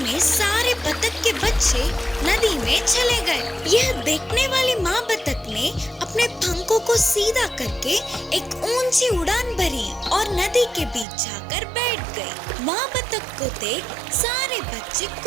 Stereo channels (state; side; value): drops out; left; at 11.1 s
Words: में सारे बतख के बच्चे नदी में चले गए। यह देखने वाली माँ बतख ने अपने पंखों को सीधा करके एक ऊंची उड़ान भरी और नदी के बीच जाकर बैठ गई। माँ बतख को देख सारे बच्चे